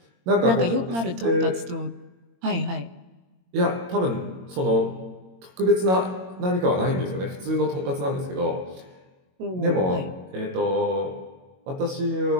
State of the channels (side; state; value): left; late; 22 ms